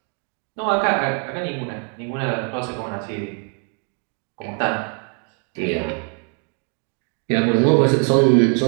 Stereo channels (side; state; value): left; quieter; 38.7 dB